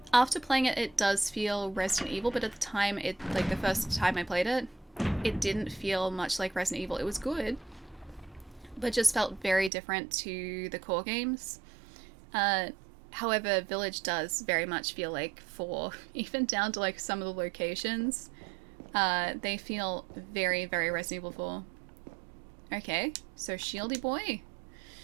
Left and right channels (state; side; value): drops out; left; at 9.7 s